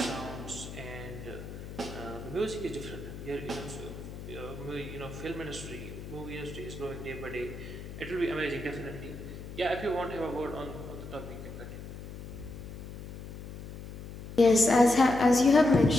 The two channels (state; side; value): noise; left; hum, 11 dB below the sound